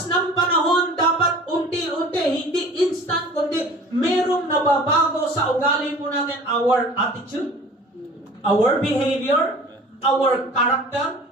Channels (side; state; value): both; normal; correlation 0.45